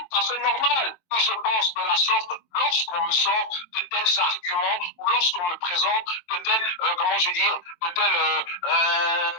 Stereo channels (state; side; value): late; right; 22 ms